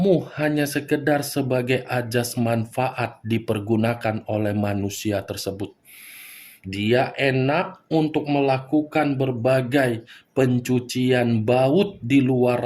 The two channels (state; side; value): identical; both; correlation 1.00